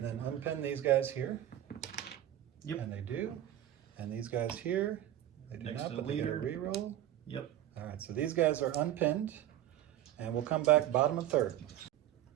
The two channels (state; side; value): quieter; left; 12.5 dB